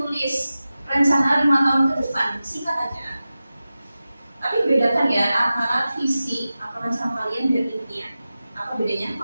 rencana 5 tahun ke depan, singkat aja. Tapi bedakan ya antara visi atau rencana kalian dan impian. Apa bedanya?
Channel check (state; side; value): inverted; both; correlation -0.94